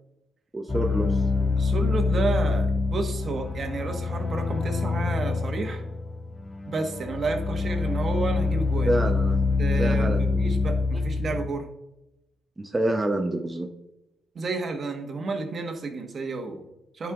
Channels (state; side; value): normal; both; correlation 0.83